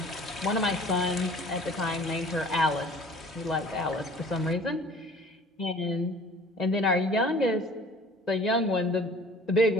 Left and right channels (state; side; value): normal; both; correlation 0.48